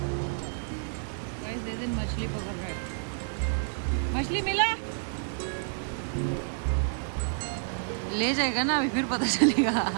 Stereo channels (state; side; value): silent; left; digital silence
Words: मछली पकड़ रहे हैं। मछली मिला? ले जाएगा ना अभी, फिर पता चलेगा।